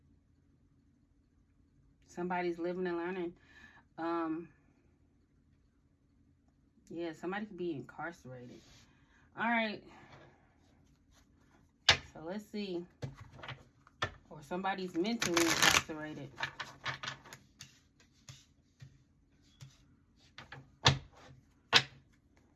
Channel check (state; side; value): identical; both; correlation 1.00